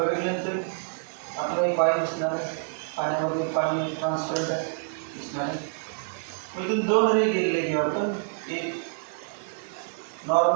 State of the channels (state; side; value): silent; left; digital silence